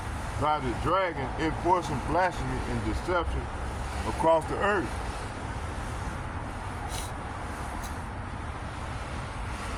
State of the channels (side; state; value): both; identical; correlation 1.00